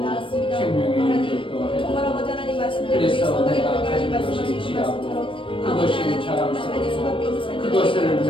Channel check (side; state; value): right; late; 0.25 ms